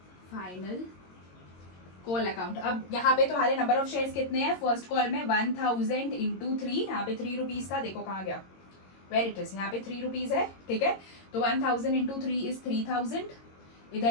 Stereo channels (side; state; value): right; late; 22 ms